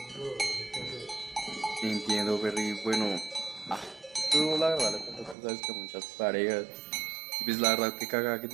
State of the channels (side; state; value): left; drops out; at 5.4 s